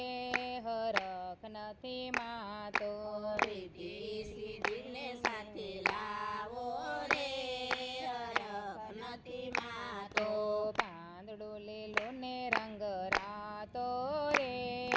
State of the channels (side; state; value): both; identical; correlation 1.00